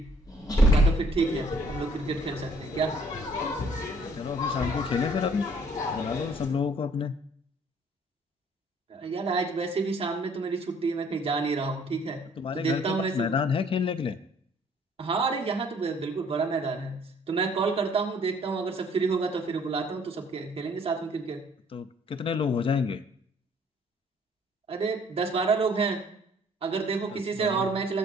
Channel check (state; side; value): normal; both; correlation 0.59